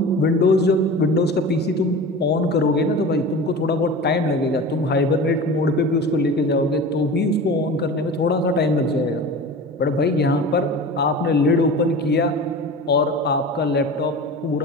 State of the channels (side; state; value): both; normal; correlation 0.34